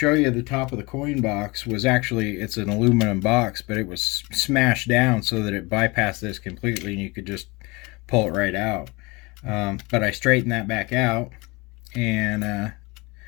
you the top of the coin box was actually, it's an aluminum box, but it was smashed down so that it bypassed this completely and you could just pull it right out. But I straightened that back out, and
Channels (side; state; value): right; quieter; 25.5 dB